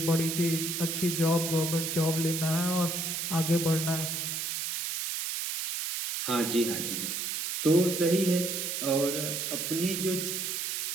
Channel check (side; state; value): right; noise; hiss, 2 dB below the sound